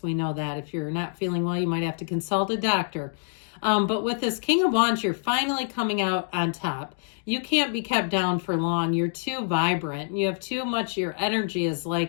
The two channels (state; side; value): silent; right; digital silence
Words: we know that. If you're not feeling well, you might have to consult a doctor. But with this King of Wands, you're finally coming out on top. You can't be kept down for long. You're too vibrant. You have too much, your energy is